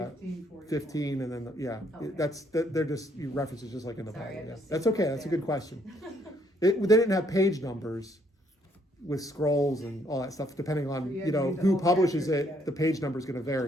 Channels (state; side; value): normal; both; correlation 0.69